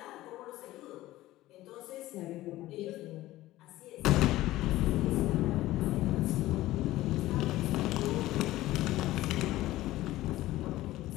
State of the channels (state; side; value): quieter; right; 16.3 dB